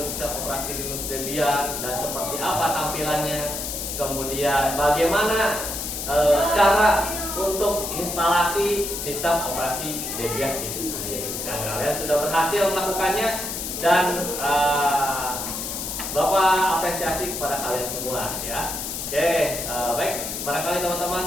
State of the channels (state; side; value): noise; left; hiss, 5 dB below the sound